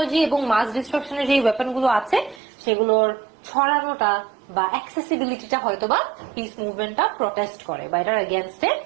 এবং মাস ডিস্ট্রাকশনের যে ওয়েপন গুলো আছে সেগুলোর ছড়ানোটা বা অ্যাক্সেসিবিলিটিটা হয়তো বা পিস মুভমেন্টটা প্রটেস্ট করে বা এটার এগেনস্টে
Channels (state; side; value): drops out; left; at 2.4 s